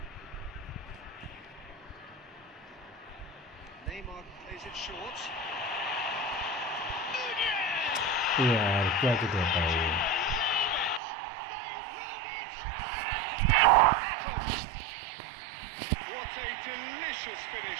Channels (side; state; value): left; drops out; at 11.0 s